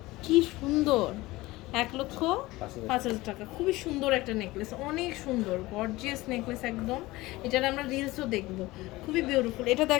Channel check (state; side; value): quieter; right; 19.6 dB